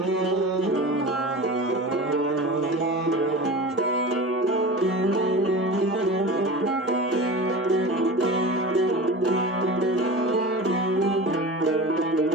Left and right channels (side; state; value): both; normal; correlation 0.32